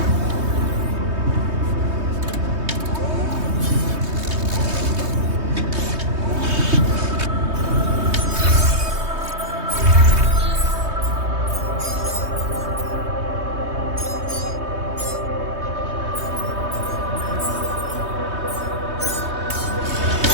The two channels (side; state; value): left; late; 3.2 ms